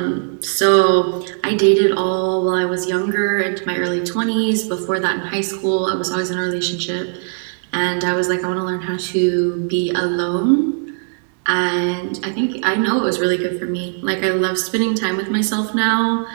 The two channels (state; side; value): silent; left; 60 dB below the other